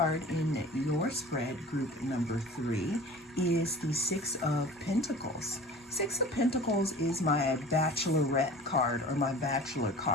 in your spread, group number 3, is the Six of Pentacles. Six of Pentacles is my bachelorette card, or my bachelor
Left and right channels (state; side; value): normal; both; correlation 0.41